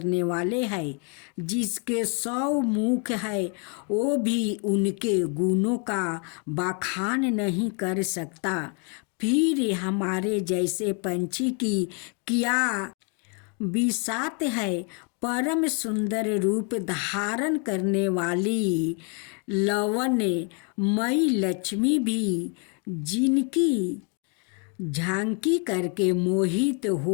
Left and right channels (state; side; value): quieter; right; 36.8 dB